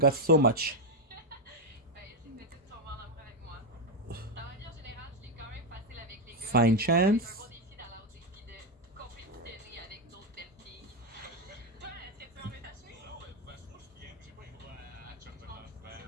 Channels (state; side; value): normal; both; correlation 0.05